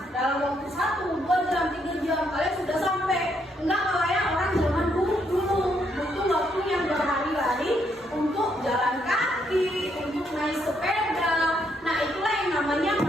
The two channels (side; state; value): both; normal; correlation 0.74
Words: Dalam waktu 1, 2 jam, 3 jam kalian sudah sampai. Enggak kayak orang zaman dulu butuh waktu yang berhari-hari untuk jalan kaki, untuk naik sepeda. Nah itulah yang namanya